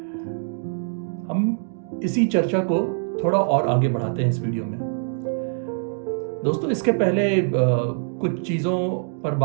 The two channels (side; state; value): left; silent; digital silence